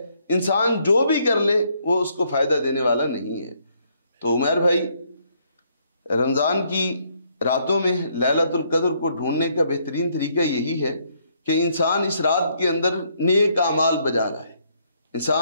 انسان جو بھی کر لے وہ اس کو فائدہ دینے والا نہیں ہے۔ تو عمیر بھائی، رمضان کی راتوں میں لیلۃ القدر کو ڈھونڈنے کا بہترین طریقہ یہی ہے کہ انسان اس رات کے اندر نیک اعمال بجا لائے،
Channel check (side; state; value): both; inverted; correlation -0.70